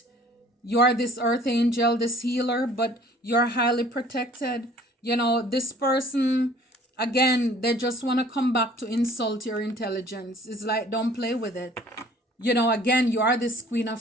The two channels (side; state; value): both; normal; correlation 0.52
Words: You're this earth angel, this healer, but you're highly protected. This person, again, they just want to come back to insult your intelligence. It's like, don't play with it. Again, you are this Queen